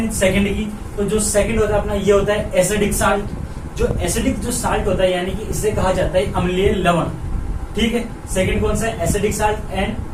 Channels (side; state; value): both; identical; correlation 1.00